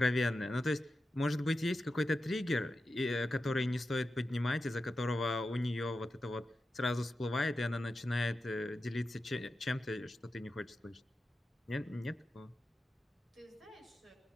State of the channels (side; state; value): both; normal; correlation 0.91